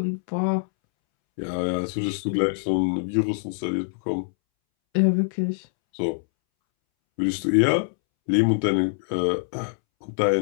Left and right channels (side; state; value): right; silent; 62 dB below the other